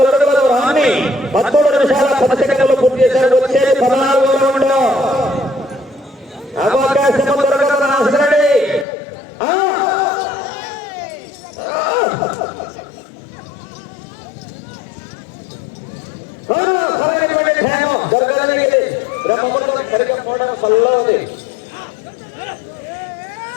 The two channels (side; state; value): right; drops out; at 8.8 s